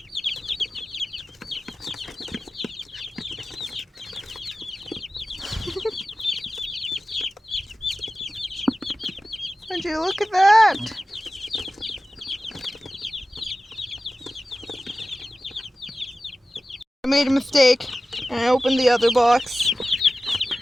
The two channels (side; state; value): both; normal; correlation 0.95